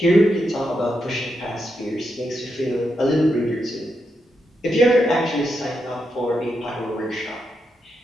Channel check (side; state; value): both; normal; correlation 0.84